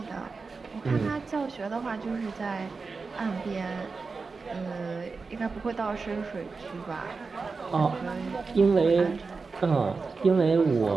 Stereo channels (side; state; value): left; quieter; 4.4 dB